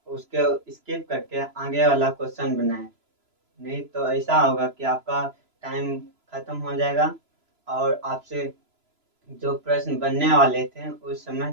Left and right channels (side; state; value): left; late; 3.0 ms